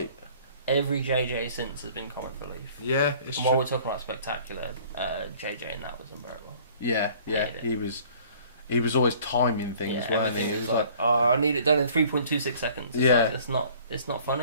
Every JJ since has been comic relief. Yeah, it's and true. while we're talking about Spectacular, JJ in that was unbearable. Yeah, he was always timing things, weren't he? It was like, "Oh, I need it done in 3.26 seconds." It's like, it's not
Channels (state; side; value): inverted; both; correlation -0.52